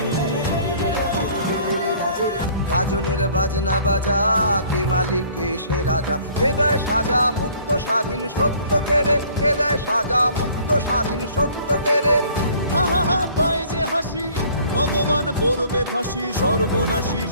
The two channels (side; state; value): both; inverted; correlation -0.54